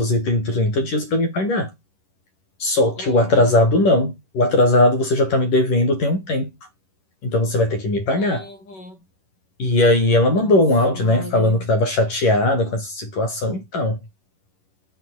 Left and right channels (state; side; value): late; right; 11 ms